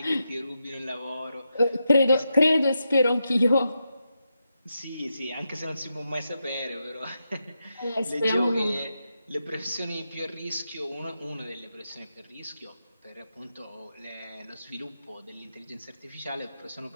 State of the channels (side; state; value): both; inverted; correlation -0.86